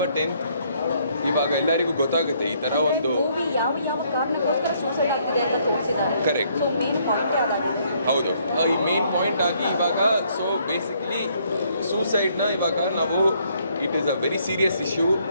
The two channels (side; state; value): both; inverted; correlation -0.67